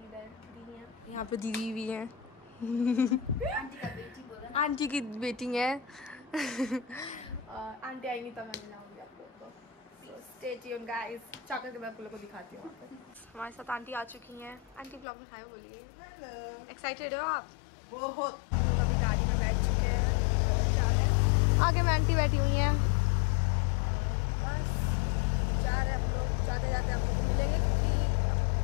इधर दीदी हैं, यहाँ पे दीदी भी हैं। आंटी की बेटी है। आंटी आएंगी तो मैं मिलाऊंगी आप लोगों को। स्टे ट्यून्ड गाइस, चाकर के मैं आप लोगों को दिखाती हूँ। हमारे साथ आंटी आ चुकी हैं। आंटी ब्लॉग में हाय बोलिए। एक्साइटेड हो आप? बहुत। हम लोग अभी गाड़ी में बैठ चुके हैं और जा रहे हैं। आगे में आंटी बैठी हुई हैं। बस जा रहे हैं हम लोग। जाते जाते हम लोग को मिलेंगे क्योंकि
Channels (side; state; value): right; drops out; at 15.1 s